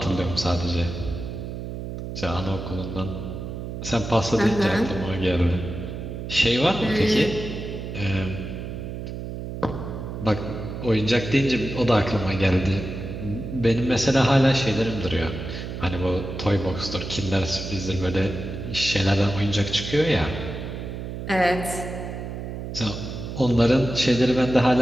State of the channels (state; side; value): noise; right; hum, 7 dB below the sound